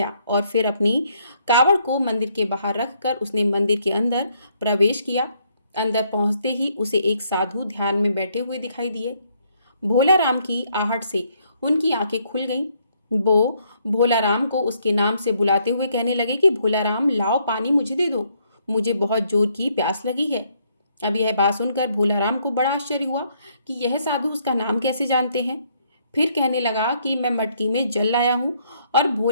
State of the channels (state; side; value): inverted; both; correlation -0.70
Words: और फिर अपनी कावड़ को मंदिर के बाहर रखकर उसने मंदिर के अंदर प्रवेश किया। अंदर पहुंचते ही उसे एक साधु ध्यान में बैठे हुए दिखाई दिए। भोला राम की आहट से उनकी आंखें खुल गईं। वो भोला राम को उसके नाम से बुलाते हुए कहने लगे कि भोला राम, लाओ पानी मुझे दे दो, मुझे बहुत जोर की प्यास लगी है। अब यह बात सुनकर भोला राम को बड़ा आश्चर्य हुआ कि यह साधु उसका नाम कैसे जानते हैं। फिर कहने लगा कि मैं मटकी में जल लाया हूँ। और